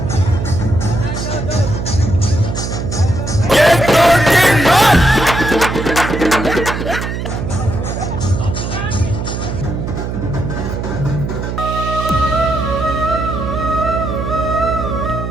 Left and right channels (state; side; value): noise; right; hum, 4 dB below the sound